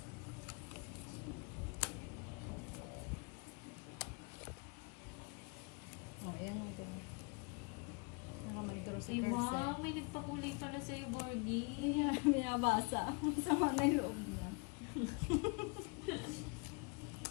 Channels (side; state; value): right; quieter; 32.9 dB